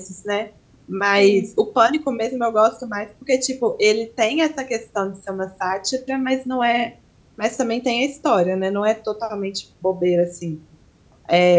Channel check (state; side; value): identical; both; correlation 1.00